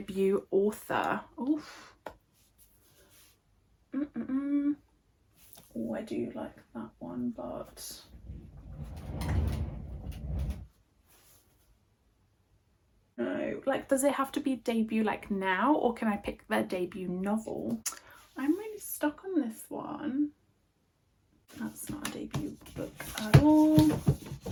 author. Oof. Oh, I do like that one, but no. Like, does it have to be debut like now, or can I pick their debut novel? I'm really stuck on this one. That's not a debut book at all.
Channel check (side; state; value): both; identical; correlation 1.00